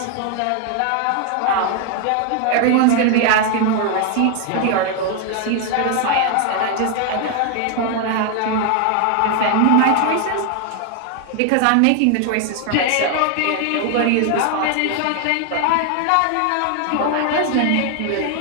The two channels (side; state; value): both; different; correlation 0.01